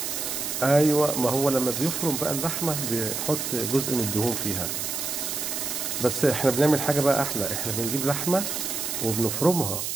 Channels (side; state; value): right; noise; hiss, 3 dB below the sound